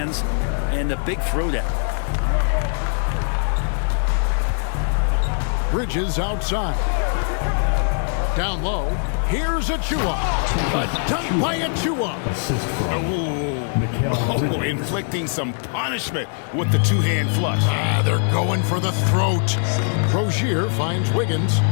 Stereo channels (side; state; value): right; silent; 61 dB below the other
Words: and a big throwdown. Bridges outside. Down low. Here's Achua. A dunk by Achua. Oh, inflicting some punishment with the two-hand flush. They're going for the throat. Rozier finds Wiggins.